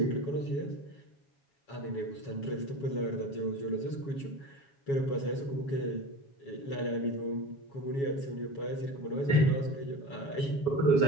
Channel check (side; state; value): right; late; 7.2 ms